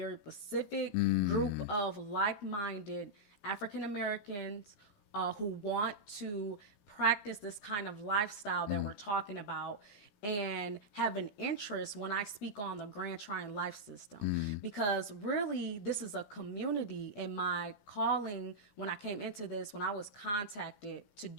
specific group of like-minded African Americans who want to practice this kind of lifestyle that we're talking about and have an interest when I speak on the Grand Trine life system. Because really, this is a community. In my calling, when I came into this, when I was contacted to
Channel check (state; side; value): late; right; 15 ms